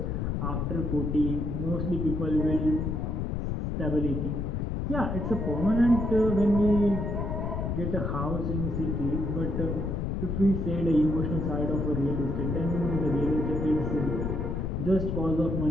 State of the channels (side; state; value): left; noise; rumble, 1 dB below the sound